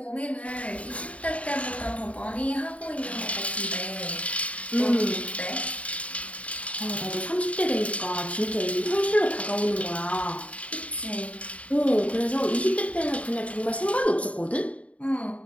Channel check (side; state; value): right; late; 0.066 ms